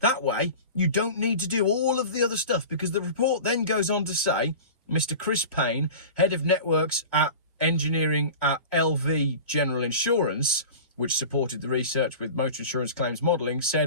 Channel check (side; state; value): both; inverted; correlation -0.35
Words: way, you don't need to do all of the other stuff, because the report then goes on to say, Mr. Chris Payne, head of networks at engineering at LV General Insurance, which supported the research with motor insurance claims modelling,